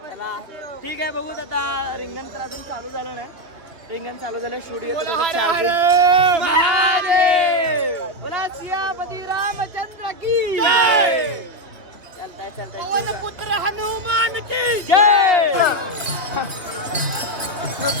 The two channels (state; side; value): late; left; 2.7 ms